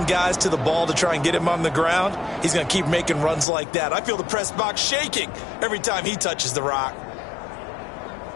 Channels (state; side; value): drops out; right; at 3.5 s